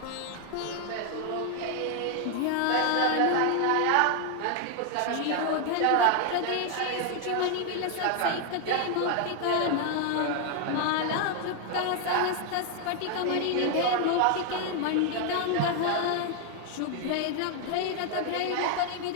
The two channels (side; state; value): both; different; correlation 0.00